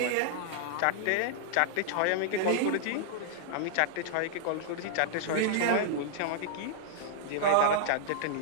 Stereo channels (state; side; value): different; both; correlation -0.01